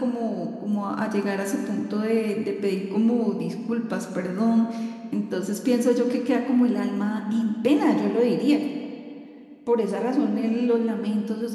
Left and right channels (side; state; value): both; identical; correlation 1.00